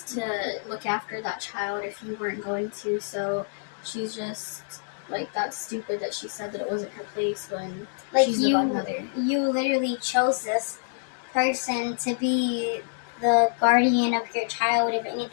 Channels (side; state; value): right; silent; digital silence